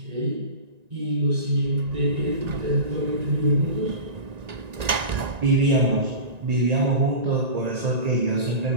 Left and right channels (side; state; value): left; late; 1.9 ms